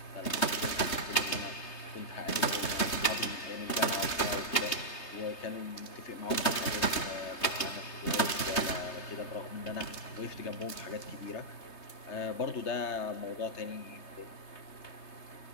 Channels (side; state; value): right; late; 3.3 ms